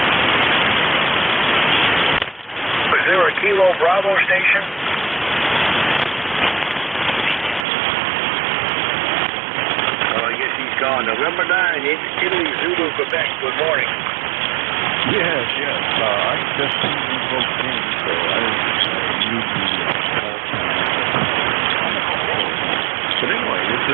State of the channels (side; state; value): left; drops out; at 7.7 s